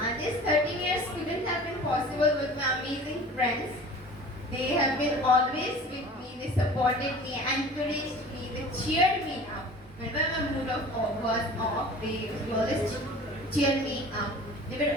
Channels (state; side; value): normal; both; correlation 0.42